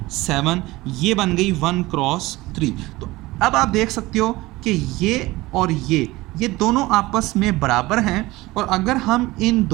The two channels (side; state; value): left; quieter; 19.7 dB